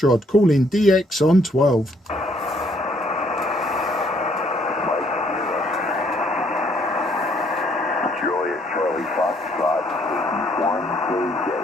calling DX on 12. Juliet Charlie Foxtrot, 1KJ,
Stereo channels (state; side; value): normal; both; correlation 0.67